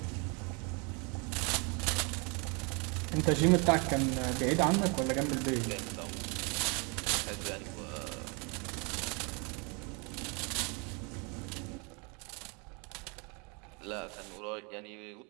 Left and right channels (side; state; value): left; quieter; 32.2 dB